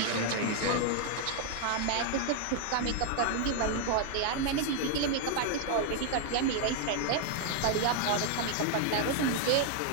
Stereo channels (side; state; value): both; different; correlation 0.00